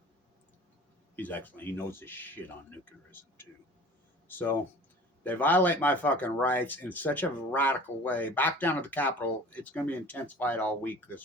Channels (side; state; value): both; normal; correlation 0.43